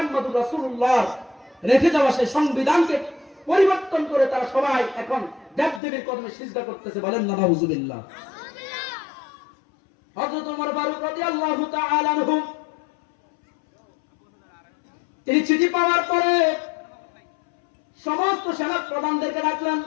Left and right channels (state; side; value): drops out; right; at 5.8 s